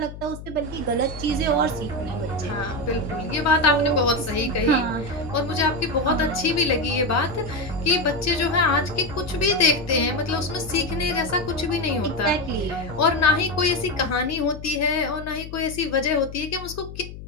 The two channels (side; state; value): left; noise; hum, 13 dB below the sound